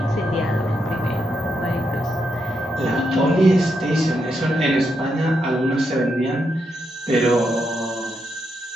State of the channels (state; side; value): normal; both; correlation 0.82